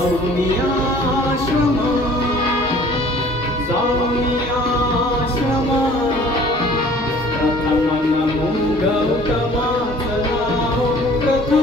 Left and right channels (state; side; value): normal; both; correlation 0.51